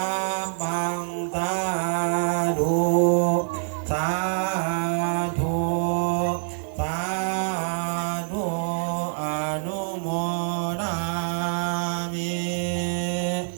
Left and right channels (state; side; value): silent; left; digital silence